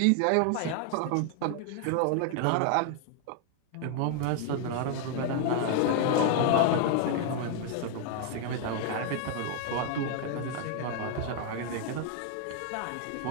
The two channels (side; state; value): both; different; correlation 0.00